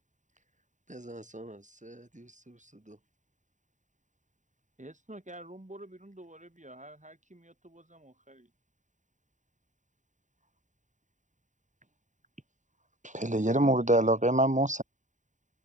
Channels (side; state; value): left; late; 0.36 ms